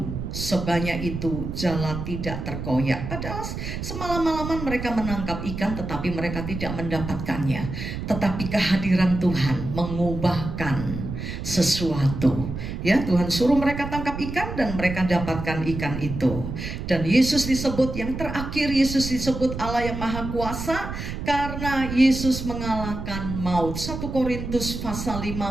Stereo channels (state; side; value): noise; right; rumble, 6 dB below the sound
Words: sebanyak itu jala tidak terkoyak. Padahal semalam-malaman mereka menangkap ikan tetapi mereka tidak mendapatkannya. Tetapi kehadiran Tuhan mengubahkan sesuatu. Ya, Tuhan suruh mereka tangkap ikan dan mereka dapatkan ikan itu. Dan Yesus disebut yang terakhir, Yesus disebut Allah yang Maha Kuasa karena Yesus mengalahkan maut. 1 Korintus pasal